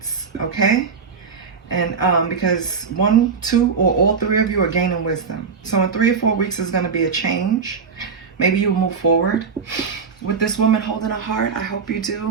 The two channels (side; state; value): left; quieter; 5.6 dB